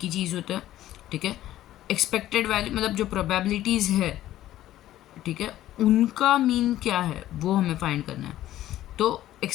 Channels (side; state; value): right; quieter; 13.7 dB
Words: ही चीज़ होता है, ठीक है। एक्सपेक्टेड वैल्यू मतलब जो प्रोबेबिलिटीज़ है, ठीक है, उनका मीन क्या है वो हमें फाइंड करना है। तो